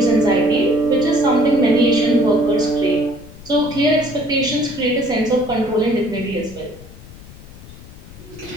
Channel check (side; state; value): left; noise; rumble, 18 dB below the sound